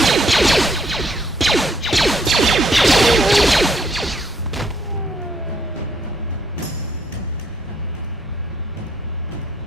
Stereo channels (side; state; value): both; normal; correlation 0.70